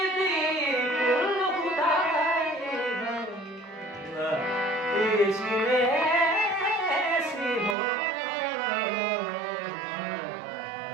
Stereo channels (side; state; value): left; drops out; at 7.8 s